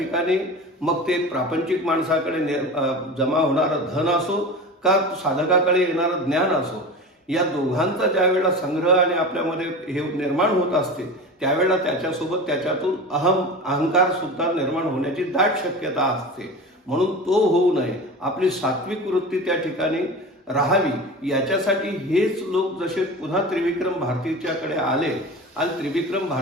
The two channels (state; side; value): normal; both; correlation 0.31